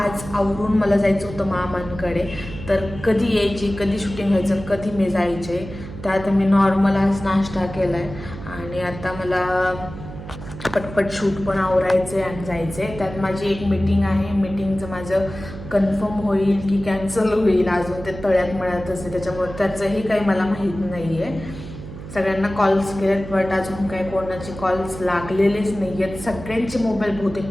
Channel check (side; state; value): right; noise; hum, 12 dB below the sound